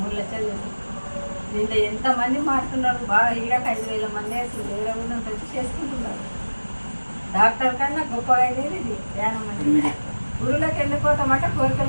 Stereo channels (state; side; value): inverted; both; correlation -1.00